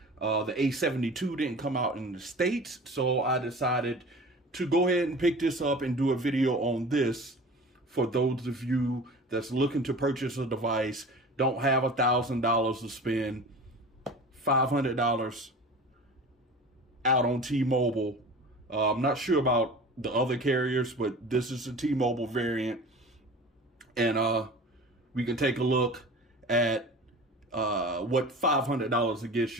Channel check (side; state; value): both; normal; correlation 0.38